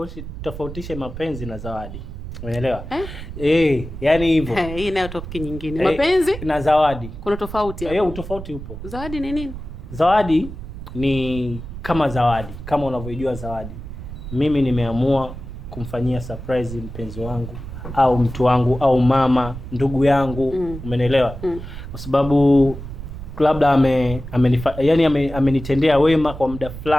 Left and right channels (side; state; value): right; noise; rumble, 10 dB below the sound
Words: tofautishe mapenzi na zawadi. Umeelewa? Yani hivyo. Hii nayo topic nyingine. Mapenzi na zawadi. Kuna tofauti hapo. Utofauti upo. Zawadi ni nini? Zawadi ni kama zawadi, kama unavyojua zawadi. Mimi nimeamua kumfanyia surprise mpenzi wangu au mtu wangu au mama, ndugu yangu, umeelewa? Kwa sababu labda amenitendea wema kwa muda